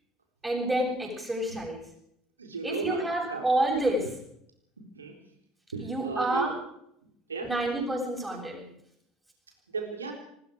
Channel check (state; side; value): normal; both; correlation 0.59